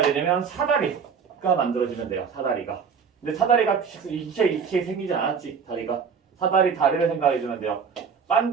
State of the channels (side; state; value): left; quieter; 6.3 dB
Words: 되냐면 사다리가 만들어지면 돼요. 사다리가. 근데 사다리가 이렇게 생기지 않았지. 다리를 생각해주면 돼요.